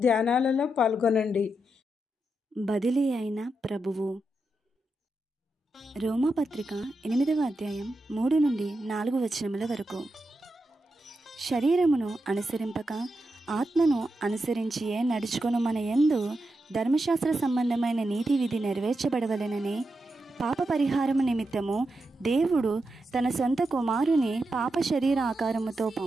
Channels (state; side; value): normal; both; correlation 0.87